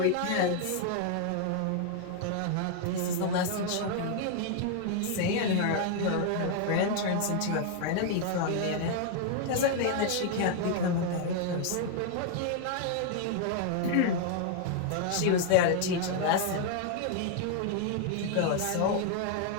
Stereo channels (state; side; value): different; both; correlation 0.00